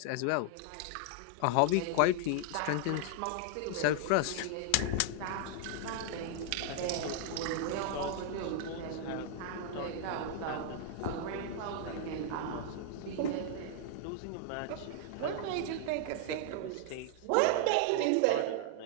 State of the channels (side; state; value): both; different; correlation 0.00